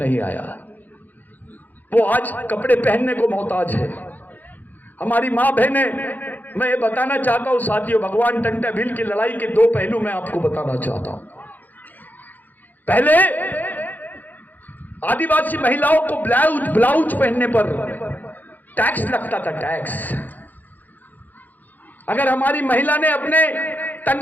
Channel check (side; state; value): right; late; 0.084 ms